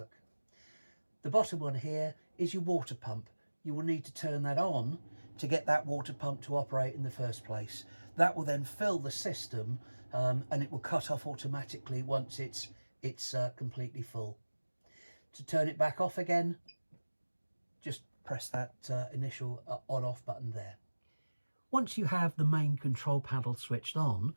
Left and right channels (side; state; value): both; inverted; correlation -1.00